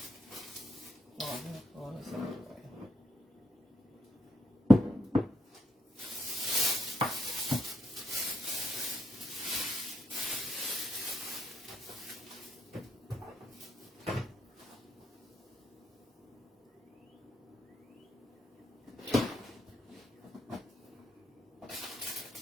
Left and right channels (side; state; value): both; normal; correlation 0.78